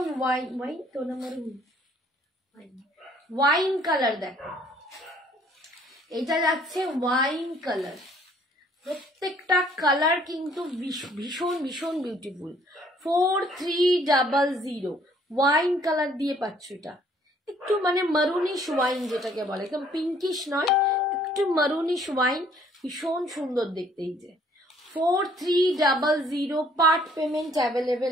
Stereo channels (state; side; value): normal; both; correlation 0.61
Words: ওয়াইন, ওয়াইন তো না মারুন, ওয়াইন কালার দেখো, এটা যাচ্ছে ওয়াইন কালার। প্রত্যেকটা কালার কিন্তু ভীষণ ভীষণ বিউটিফুল। 4300 ওয়াইন কালার দিয়ে পাচ্ছ। এটা একটু মানে মারুনিশ ওয়াইন যেটাকে বলে, একদম পিঙ্কিশ নয়, একটু মারুনিশ ওয়াইন, ভীষণ সুন্দর দেখতে। এই যে 4300, পার্ট পেমেন্ট